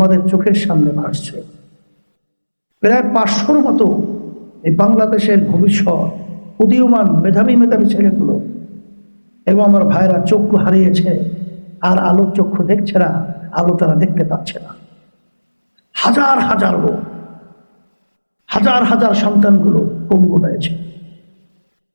চোখের সামনে ভাসছে। প্রায় 500-র মতো এই বাংলাদেশের ভবিষ্যৎ উদীয়মান মেধাবী ছেলেগুলো এবং আমার ভাইরা চক্ষু হারিয়েছে, আর আলোর চক্ষু দেখছে না, আলো তারা দেখতে পাচ্ছে না। হাজার হাজার লোক, হাজার হাজার সন্তানগুলো পঙ্গু হয়েছে।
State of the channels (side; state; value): both; inverted; correlation -1.00